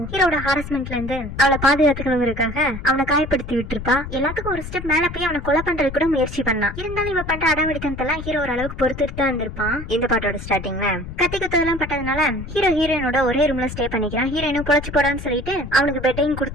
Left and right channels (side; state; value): left; noise; rumble, 10 dB below the sound